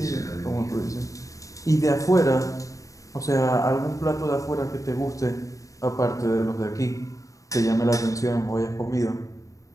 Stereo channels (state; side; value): late; right; 0.16 ms